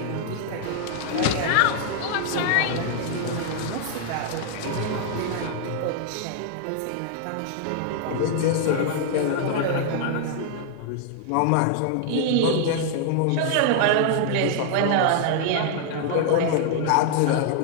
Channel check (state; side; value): different; both; correlation 0.00